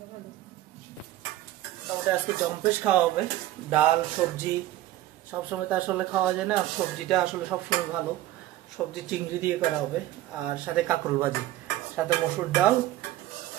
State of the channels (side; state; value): left; quieter; 14.6 dB